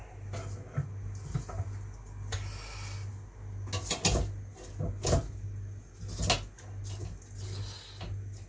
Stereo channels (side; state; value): both; identical; correlation 1.00